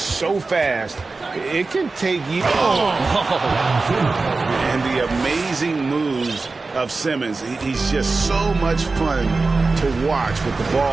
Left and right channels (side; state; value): left; quieter; 3.8 dB